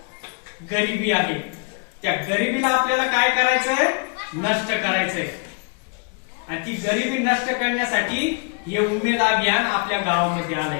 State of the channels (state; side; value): quieter; right; 37.4 dB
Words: गरिबी आहे. त्या गरिबीला आपल्याला काय करायचंय? नष्ट करायचंय. आणि ती गरिबी नष्ट करण्यासाठी हे उमेद अभियान आपल्या गावामध्ये